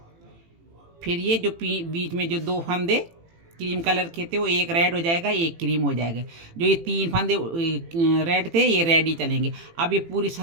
फिर ये जो बीच में जो 2 फंदे क्रीम कलर के थे, वो एक रेड हो जाएगा, एक क्रीम हो जाएगा। जो ये 3 फंदे रेड थे, ये रेड ही चलेंगे। अब ये पूरी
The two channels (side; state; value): left; late; 18 ms